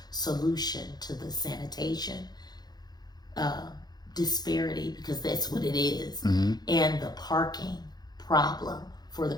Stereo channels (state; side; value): late; right; 0.19 ms